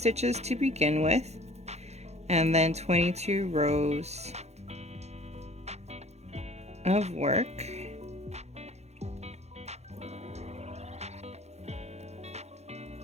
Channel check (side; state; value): left; late; 0.32 ms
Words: to begin with, and then 22 rows of work.